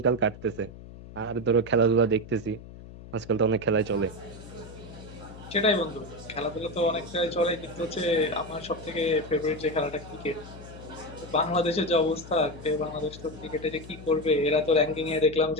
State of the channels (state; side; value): noise; left; hum, 16 dB below the sound